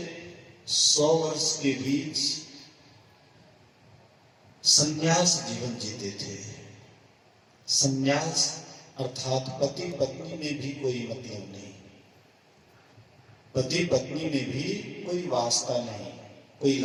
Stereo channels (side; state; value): both; identical; correlation 1.00